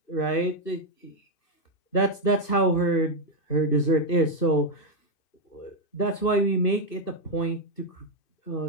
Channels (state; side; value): late; right; 2.6 ms